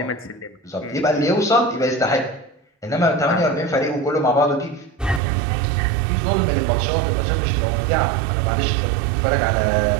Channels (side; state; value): left; drops out; at 5.2 s